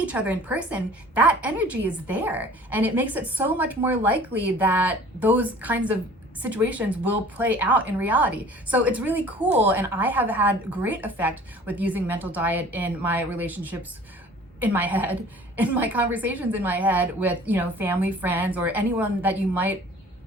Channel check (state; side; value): normal; both; correlation 0.48